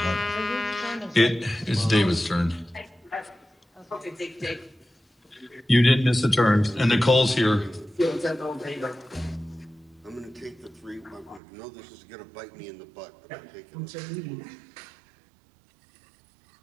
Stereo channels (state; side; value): drops out; left; at 11.4 s